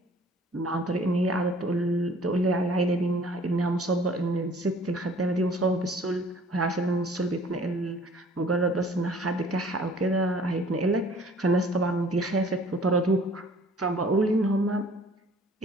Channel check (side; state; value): both; normal; correlation 0.53